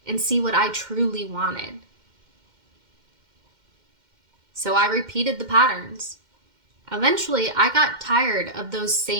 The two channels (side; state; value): left; late; 2.1 ms